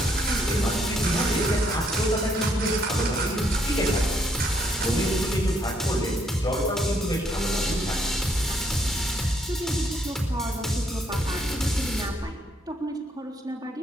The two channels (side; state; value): both; normal; correlation 0.71